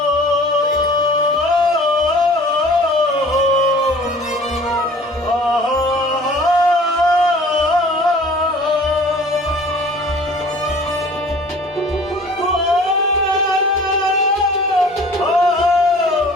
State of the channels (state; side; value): normal; both; correlation 0.48